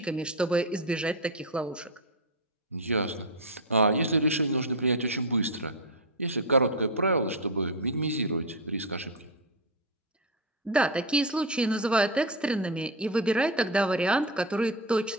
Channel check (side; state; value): both; normal; correlation 0.10